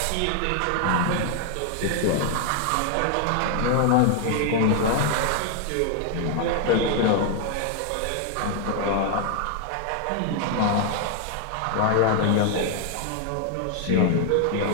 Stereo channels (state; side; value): different; both; correlation 0.00